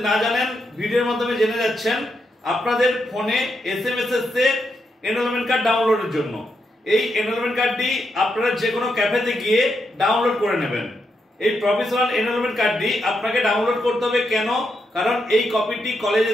না জানেন ভিডিওর মাধ্যমে জেনে যাচ্ছেন। আপনাদের ফোনে এসএমএস এসছে এনরোলমেন্ট কার্ড ডাউনলোডের জন্য। এই এনরোলমেন্ট কার্ডটি আপনারা যে কোনো ক্যাফেতে গিয়ে ডাউনলোড করে নেবেন। এই প্রফেশনাল এনরোলমেন্ট কার্ডটি আপনাকে ডাউনলোড করতে হবে কেন? কারণ এই কপিটি কলেজে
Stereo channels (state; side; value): normal; both; correlation 0.82